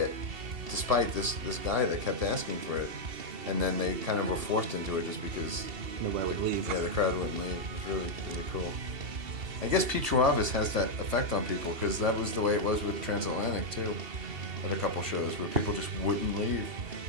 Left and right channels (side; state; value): left; late; 2.7 ms